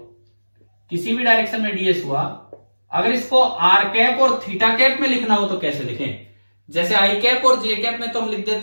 किसी भी डायरेक्शन में ds हुआ, अगर इसको आर कैप और थीटा कैप में लिखना हो तो कैसे लिखें? जैसे आई कैप और जे कैप में तो हम लिख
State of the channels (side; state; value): both; inverted; correlation -1.00